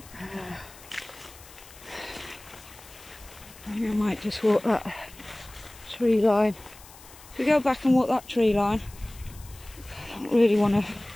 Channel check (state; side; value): noise; left; hiss, 21 dB below the sound